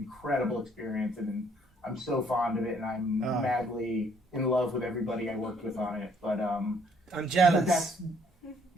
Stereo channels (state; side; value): normal; both; correlation 0.64